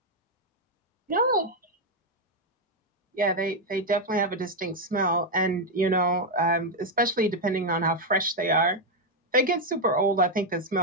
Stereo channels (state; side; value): normal; both; correlation 0.02